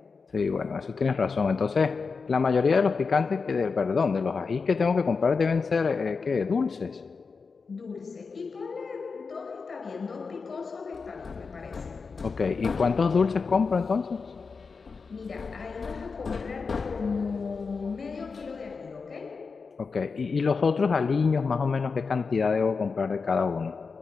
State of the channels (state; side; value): quieter; right; 4.8 dB